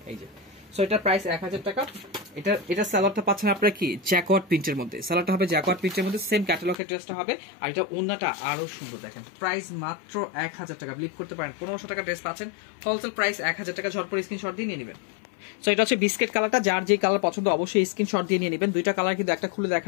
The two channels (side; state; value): right; drops out; at 6.8 s